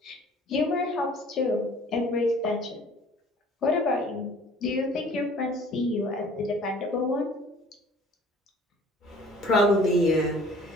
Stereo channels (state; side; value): normal; both; correlation 0.51